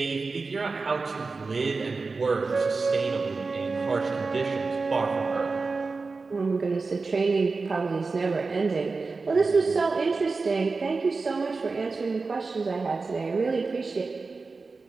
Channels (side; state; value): left; quieter; 4.1 dB